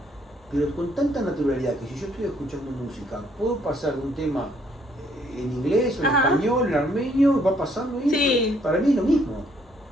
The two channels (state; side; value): normal; both; correlation 0.67